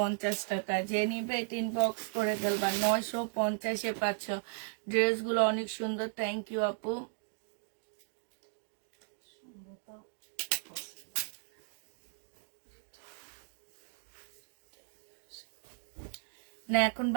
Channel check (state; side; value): silent; left; digital silence